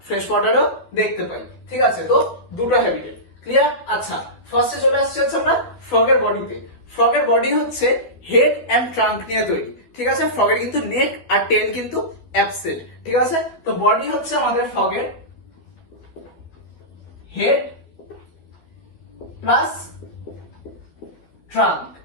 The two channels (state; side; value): late; right; 13 ms